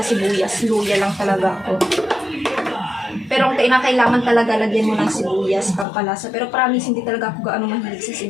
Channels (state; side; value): drops out; right; at 5.9 s